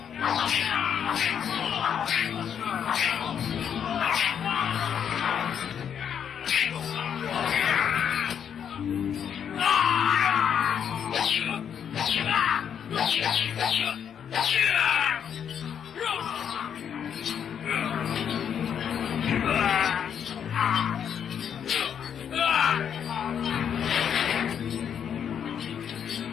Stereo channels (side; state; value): right; quieter; 8.3 dB